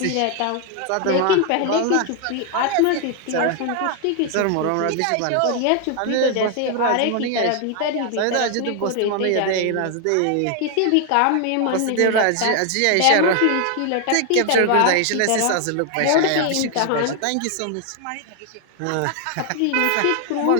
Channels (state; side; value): different; both; correlation 0.00